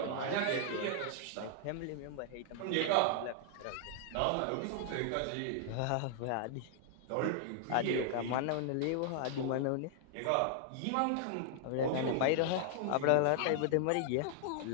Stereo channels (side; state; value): both; different; correlation 0.00